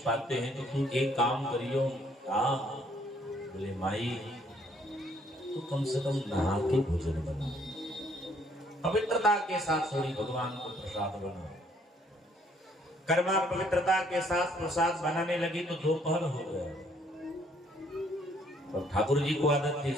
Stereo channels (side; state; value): both; normal; correlation 0.64